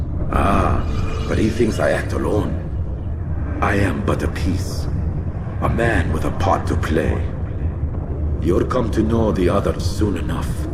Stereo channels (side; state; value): both; identical; correlation 1.00